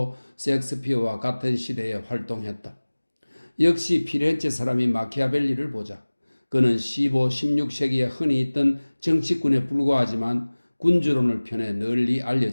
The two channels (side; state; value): both; inverted; correlation -1.00